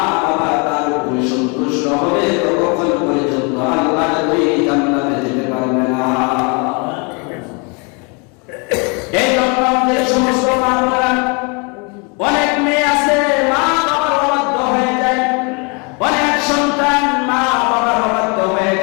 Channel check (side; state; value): right; quieter; 32.8 dB